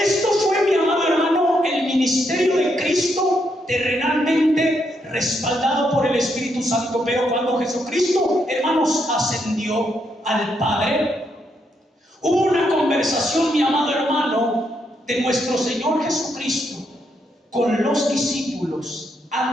fue, mi amado hermano, el ministerio de Cristo terrenalmente respaldado por el Espíritu Santo. Pero cuando Jesucristo, hermanos, ascendió al Padre, hubo una conversación, mi amado hermano, de nuestro Señor Jesucristo con los discípulos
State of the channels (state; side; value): normal; both; correlation 0.78